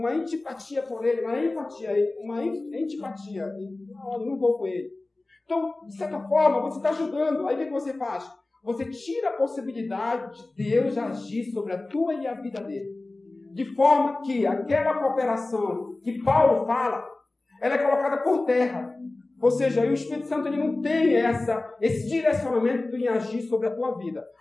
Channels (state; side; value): quieter; right; 3.0 dB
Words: antipatia por ele, uma antipatia. Não, eu não vou com ele. Então, de certa forma, você está ajudando. Aí o que você faz? Você tira a possibilidade de Deus agir sobre a tua e a vida dele. De forma que aquela cooperação que Paulo fala, ela é colocada por terra. Ou seja, o Espírito Santo ele não tem esse direcionamento em agir sobre a tua vida.